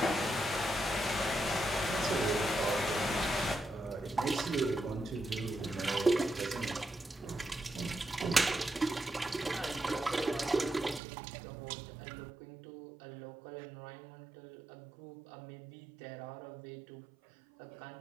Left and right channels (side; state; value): left; drops out; at 11.0 s